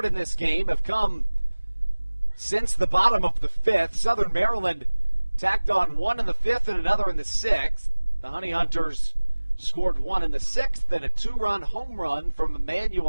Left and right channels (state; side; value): inverted; both; correlation -1.00